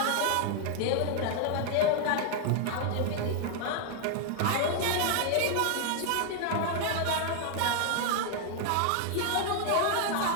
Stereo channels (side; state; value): both; different; correlation 0.00